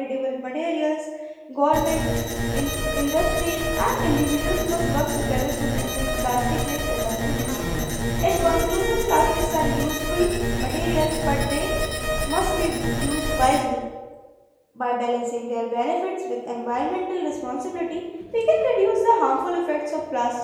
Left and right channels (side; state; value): both; identical; correlation 1.00